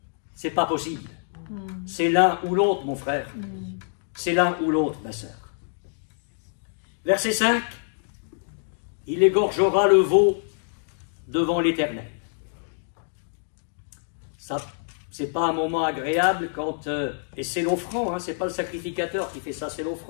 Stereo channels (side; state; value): right; silent; digital silence